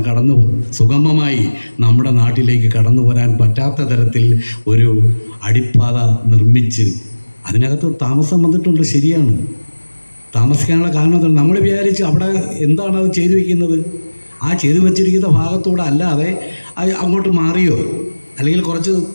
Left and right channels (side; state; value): both; inverted; correlation -1.00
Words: സുഗമമായി നമ്മുടെ നാട്ടിലേക്ക് കടന്നു വരാൻ പറ്റാത്ത തരത്തിൽ ഒരു അടിപ്പാത നിർമ്മിച്ച് അതിനകത്ത് താമസം വന്നിട്ടുണ്ട്. ശരിയാണ്, താമസിക്കാനുള്ള കാരണം നമ്മൾ വിചാരിച്ച് അവിടെ എന്താണ് അത് ചെയ്തു വയ്ക്കുന്നത്, ആ ചെയ്തു വച്ചിരിക്കുന്ന ഭാഗത്തൂടെ അല്ലാതെ അങ്ങോട്ട് മാറിയോ അല്ലെങ്കിൽ കുറച്ച്